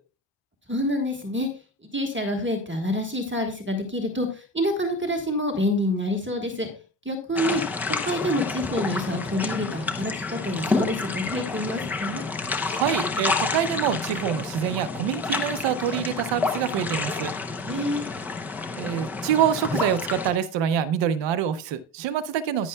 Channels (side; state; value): both; normal; correlation 0.30